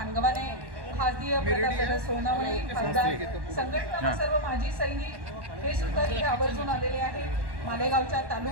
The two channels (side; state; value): left; late; 1.1 ms